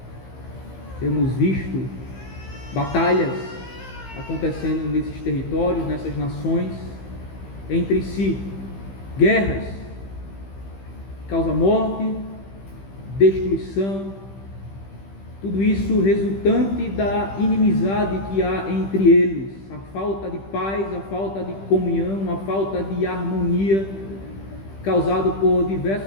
Temos visto batalhas acontecendo nesses territórios, nessas nações, entre si, guerras, causa morte, destruição, tudo isso resultante da inimizade que há entre eles, a falta de paz, a falta de comunhão, a falta de harmonia, causado por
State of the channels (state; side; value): late; right; 15 ms